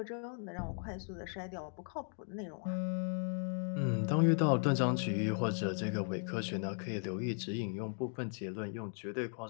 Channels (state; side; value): silent; right; 53 dB below the other